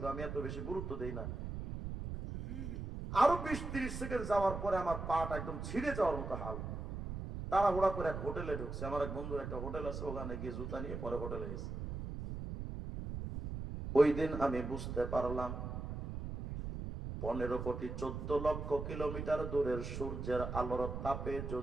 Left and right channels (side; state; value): right; noise; rumble, 6 dB below the sound